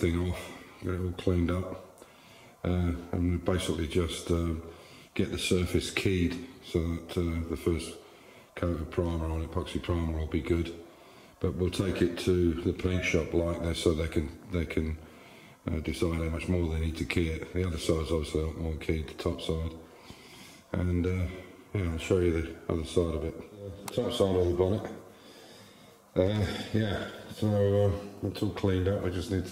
off, got it all cleaned up, and basically just get the surface keyed so that the first coat of primer on epoxy primer will be good. But we'll take it to the paint shop like this so they can decide how much more they need to key it. The other side's obviously a lot more keyed, the top side. And yeah, I'll show you the other side of it. The top side of the bonnet. Yeah, so it's all cleaned up. We just need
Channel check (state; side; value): identical; both; correlation 1.00